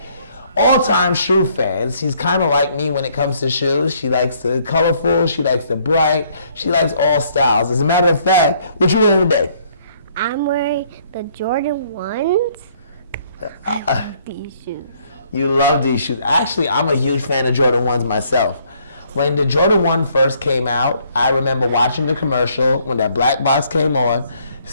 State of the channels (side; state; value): both; inverted; correlation -0.65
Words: all-time shoe fans. She's kind of like me when it comes to shoes. She likes the colorful. She likes the bright. She likes all styles. As a matter of fact, what you wearing today? I'm wearing the Jordan 1s. I love these shoes. You love these shoes. Actually, I'm a huge fan of Jordan 1s myself. When the Jordan 1 first came out, I remember watching the commercial when that black box came on